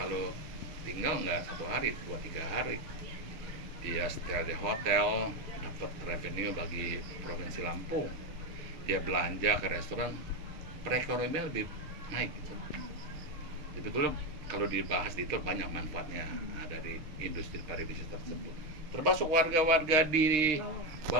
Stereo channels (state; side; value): late; left; 6.5 ms